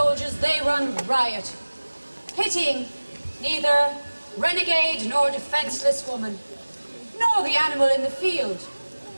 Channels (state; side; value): inverted; both; correlation -1.00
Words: they run riot, pitying neither renegade nor defenseless woman, nor the animal in the field.